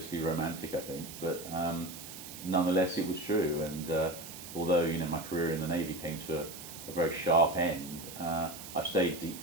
romantic, I think, but nonetheless it was true. And although my career in the Navy came to a very sharp end, I've stayed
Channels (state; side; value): noise; right; hiss, 12 dB below the sound